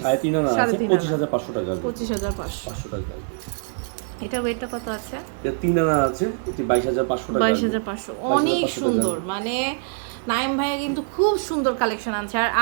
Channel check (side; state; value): left; silent; digital silence